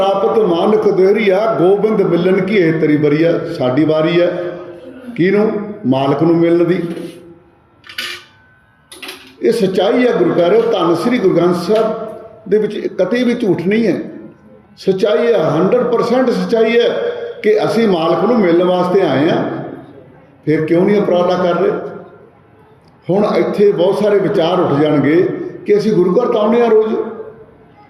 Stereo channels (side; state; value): both; identical; correlation 1.00